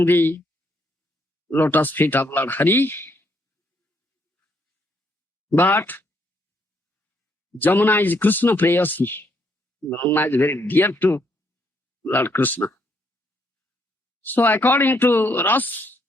the lotus feet of Lord Hari, but Jamuna is Krishna Prayasi. Jamuna is very dear to Lord Krishna. So according to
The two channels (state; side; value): normal; both; correlation 0.73